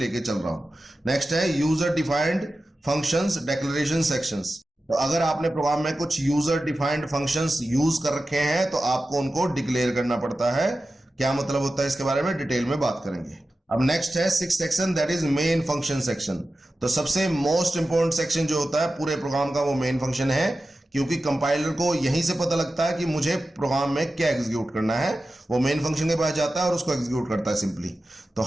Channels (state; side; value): normal; both; correlation 0.94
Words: चल रहा हूं। नेक्स्ट है user defined functions declaration sections. तो अगर आपने प्रोग्राम में कुछ यूजर डिफाइंड फंक्शंस यूज कर रखे हैं तो आपको उनको डिक्लेयर करना पड़ता है। क्या मतलब होता है इसके बारे में डिटेल में बात करेंगे। अब नेक्स्ट है six section, that is main function section. तो सबसे मोस्ट इंपॉर्टेंट सेक्शन जो होता है पूरे प्रोग्राम का वो मेन फंक्शन है, क्योंकि कंपाइलर को यहीं से पता लगता है कि मुझे प्रोग्राम में क्या एग्जीक्यूट करना है। वो मेन फंक्शन के पास जाता है और उसको एग्जीक्यूट करता है सिंपली। तो